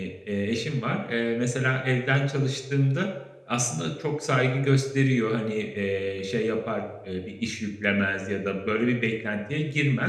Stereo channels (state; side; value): identical; both; correlation 1.00